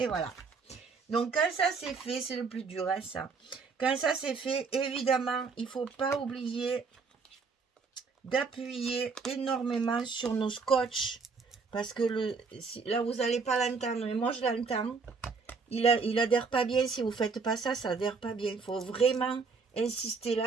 voilà. Donc quand ça c'est fait, c'est le plus dur, hein, ça. Quand ça c'est fait, évidemment, il ne faut pas oublier d'appuyer énormément sur nos scotch parce que là vous n'allez pas l'entendre mais moi je l'entends, il adhère pas bien. Si vous faites pas ça, ça adhère pas bien. Il faut vraiment insister.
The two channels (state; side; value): quieter; left; 4.8 dB